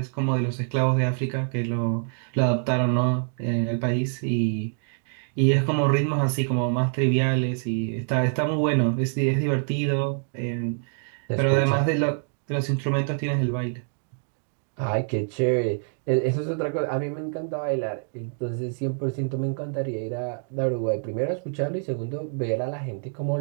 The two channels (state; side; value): silent; left; digital silence